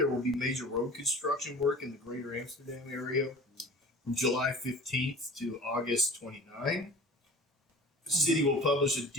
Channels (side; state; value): both; normal; correlation 0.42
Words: will be major road construction work in the greater Amsterdam area from July 15th to August 29th. The city will publish a